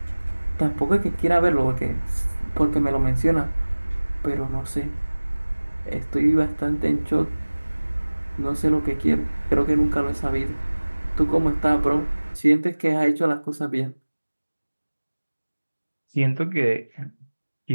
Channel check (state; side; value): inverted; both; correlation -1.00